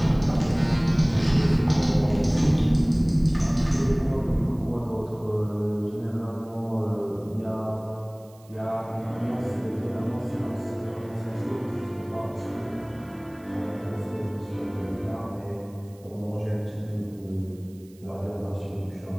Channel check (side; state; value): right; noise; hiss, 28 dB below the sound